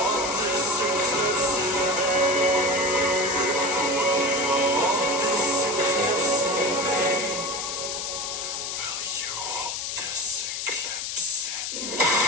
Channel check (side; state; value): left; noise; hiss, 4 dB below the sound